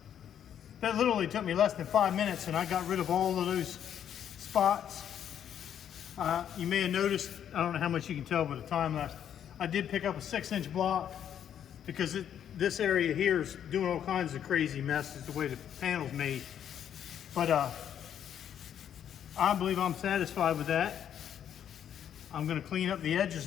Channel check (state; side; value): quieter; right; 9.4 dB